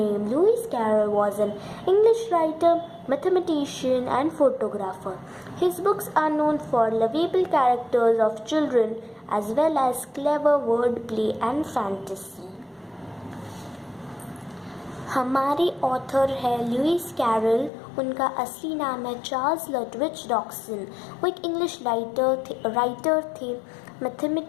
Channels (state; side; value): drops out; right; at 17.7 s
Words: Lewis Carroll, was an English writer, mathematician, and photographer. His books are known for lovable characters of children as well as clever wordplay and fantasy. हमारे author है Lewis Carol. उनका असली नाम है Charles लटविच डॉक्सन। वो एक English writer थे,